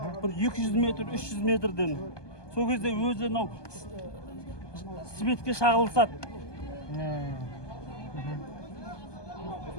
Бір 200 метр, 300 метрден. Сол кезде өзі анау светке шағылысады.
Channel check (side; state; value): right; late; 1.2 ms